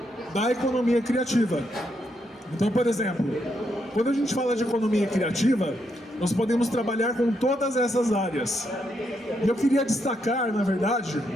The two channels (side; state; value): both; normal; correlation 0.79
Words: da economia criativa. Então, por exemplo, quando a gente fala de economia criativa, nós podemos trabalhar com todas essas áreas. E eu queria destacar, na verdade,